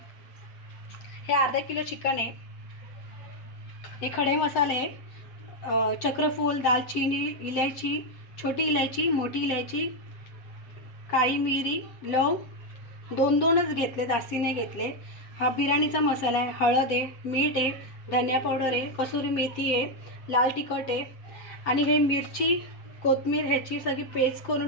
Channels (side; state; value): right; late; 7.8 ms